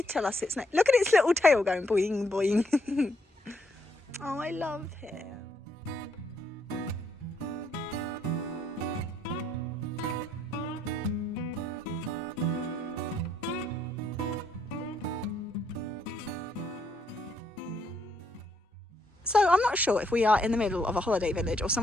tell us it's nice. Look at its little tail going boing, boing. Oh, I love him. So I'm not sure if we are in the middle of a holiday village or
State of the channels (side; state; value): both; normal; correlation 0.73